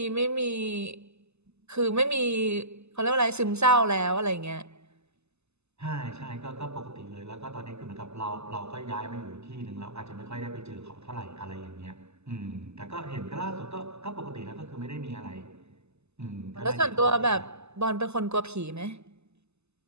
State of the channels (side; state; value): left; late; 0.80 ms